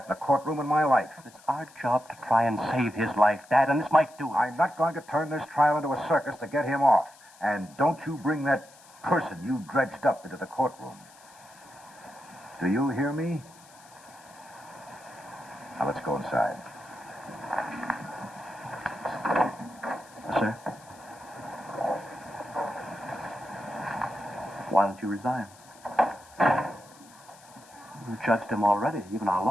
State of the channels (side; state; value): left; noise; hiss, 24 dB below the sound